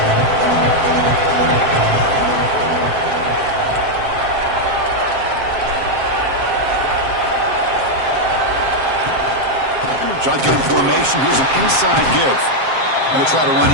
Shotgun formation. Here's an inside give. Going to try to run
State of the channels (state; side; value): late; left; 7.6 ms